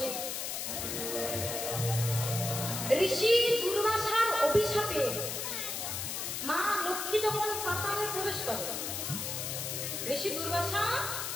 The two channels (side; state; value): left; noise; hiss, 3 dB below the sound